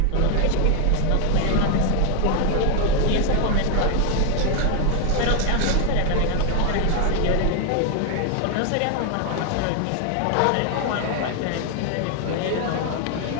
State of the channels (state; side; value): different; both; correlation 0.00